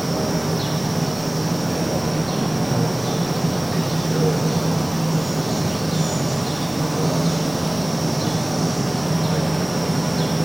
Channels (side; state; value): left; noise; rumble, 20 dB below the sound